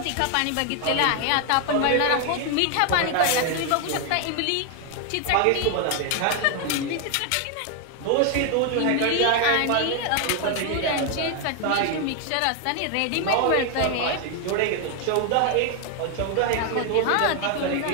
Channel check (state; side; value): different; both; correlation 0.01